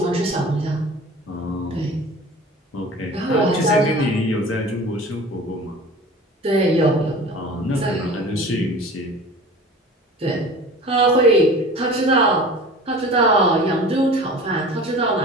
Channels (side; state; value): both; normal; correlation 0.40